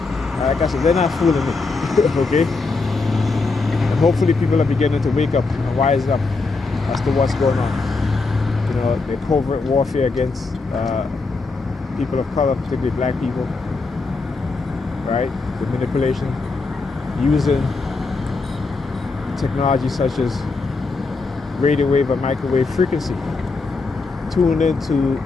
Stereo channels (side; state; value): right; quieter; 3.9 dB